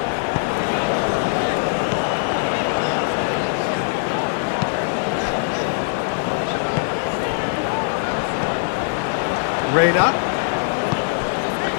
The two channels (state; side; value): silent; right; digital silence